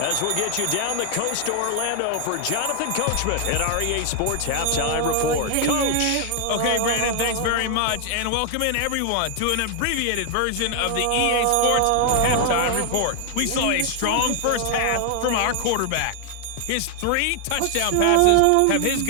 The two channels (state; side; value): different; both; correlation 0.00